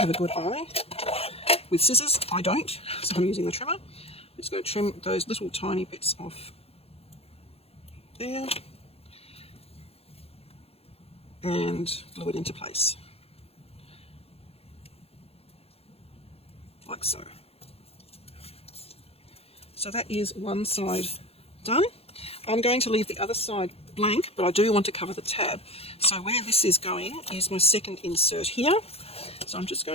a good eye. With scissors, I don't, so I'm using the trimmer. I'm just going to trim those little tiny bits off there and glue it into place, like so. So that is one side done. I'm going to leave the other side blank, but I do want to cover the tab. So where this is going is my second insert here. So I'm just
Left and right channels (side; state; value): right; late; 0.29 ms